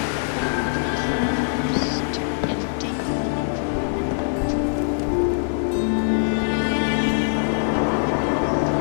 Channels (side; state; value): right; silent; digital silence